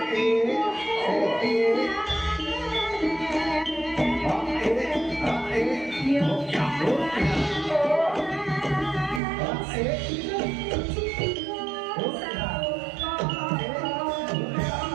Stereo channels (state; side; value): drops out; left; at 9.2 s